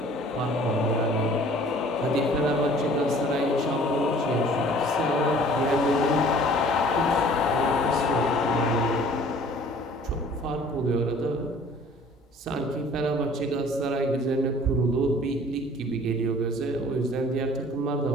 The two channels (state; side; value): normal; both; correlation 0.51